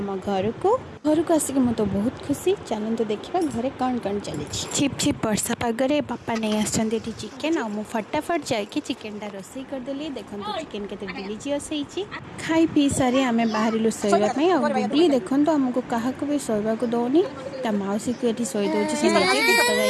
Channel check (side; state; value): both; identical; correlation 1.00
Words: घर को आसिक मु तो बहुत खुशी। चलते देखा घरे कौन कौन चली। छिप छिप वर्षा पगरे बापा नहीं आसछन्ते चिकेन आ मु फटाफट जाके चिकेनटा रोसई करदेली। देखो चिकेन केते डिलीजियस होईची। खाई पी सारी आमे बाहरिलु सोइबा आ गुगली देखो आमको क्या भी सोइबा को दौनी। ता मौसी को ये सोई दौर से